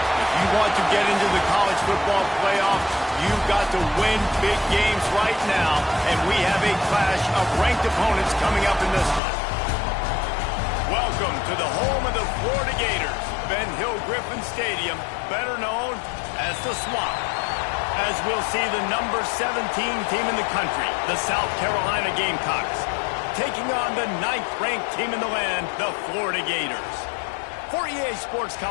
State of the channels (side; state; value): right; drops out; at 9.2 s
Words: If you want to get into the college football playoff, you've got to win big games right now, and we have a clash of ranked opponents coming up in this one. Welcome to the home of the Florida Gators, Ben Hill Griffin Stadium, better known as the Swamp. As we'll see the number 17 team in the country, the South Carolina Gamecocks, taking on the 9th-ranked team in the land, the Florida Gators. For EA Sports